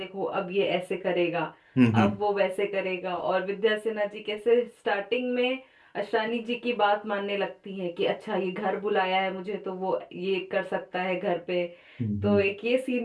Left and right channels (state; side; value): identical; both; correlation 1.00